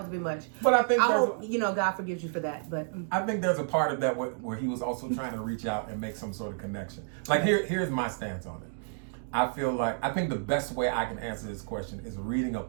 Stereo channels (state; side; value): silent; left; digital silence